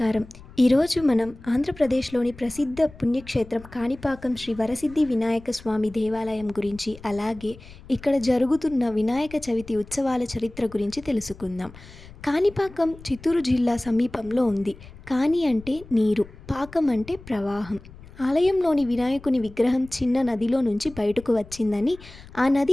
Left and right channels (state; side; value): noise; left; rumble, 19 dB below the sound